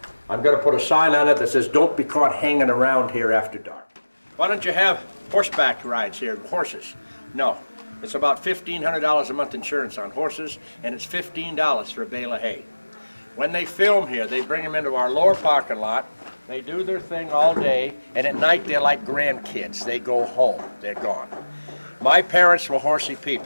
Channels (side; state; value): both; inverted; correlation -1.00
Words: I'm going to put a sign on it that says, don't be caught hanging around here after dark. Why don't you have horseback rides here, horses? No. It's about $1,500 a month insurance on horses, and it's $15 for a bale of hay. When they film here, they bring them into our lower parking lot. They do their thing all day, and at night they're like grandkids. They go home. They're gone. My parents were horsey